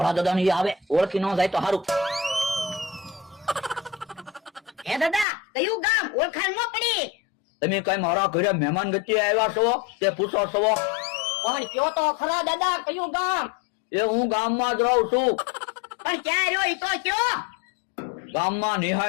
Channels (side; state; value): right; drops out; at 5.2 s